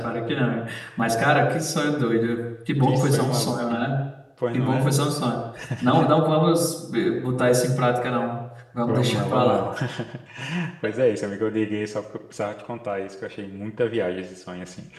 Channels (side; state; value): both; identical; correlation 1.00